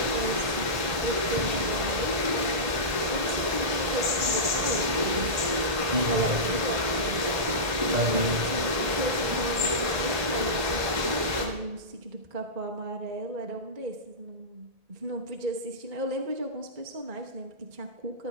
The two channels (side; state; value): left; late; 1.8 ms